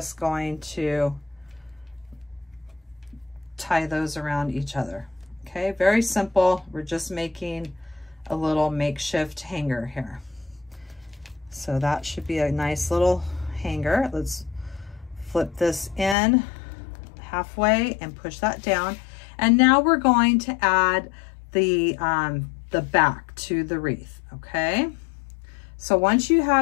going to tie those around each other. Okay, very simple. We're just making a little makeshift hanger here. So that should be a nice little hanger. Let's flip this in halfway and push that down. And now we're going to add the back to the wreath, okay? So once you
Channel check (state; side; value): drops out; right; at 16.2 s